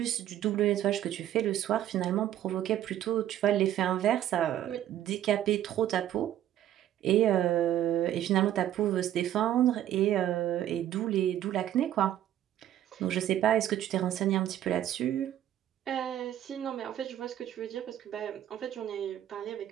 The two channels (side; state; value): left; quieter; 11.8 dB